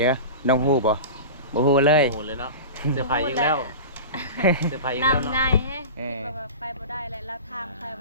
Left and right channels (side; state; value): both; inverted; correlation -0.30